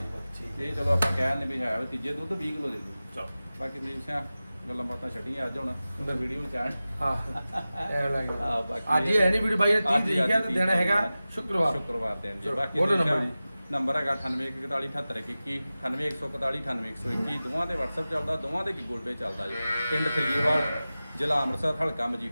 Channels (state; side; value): inverted; both; correlation -0.96